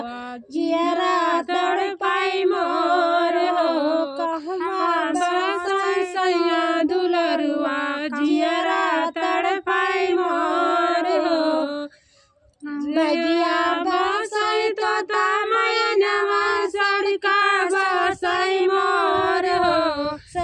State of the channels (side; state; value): both; identical; correlation 1.00